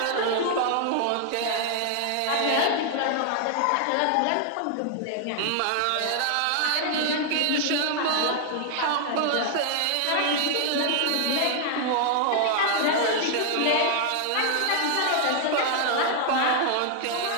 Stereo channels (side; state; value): both; different; correlation 0.00